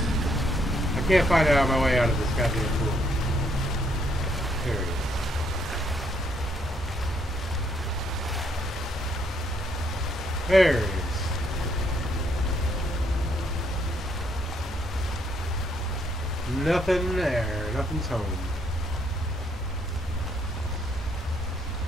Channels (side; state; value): both; normal; correlation 0.71